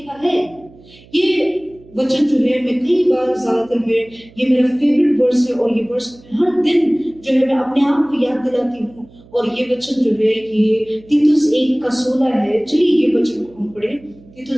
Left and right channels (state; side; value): noise; right; hum, 25 dB below the sound